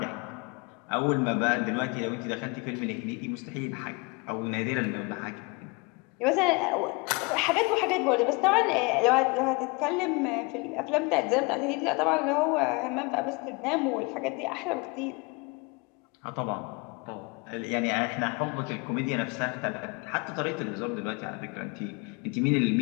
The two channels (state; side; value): quieter; right; 28.6 dB